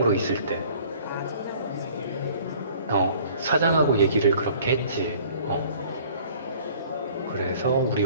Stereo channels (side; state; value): both; inverted; correlation -0.52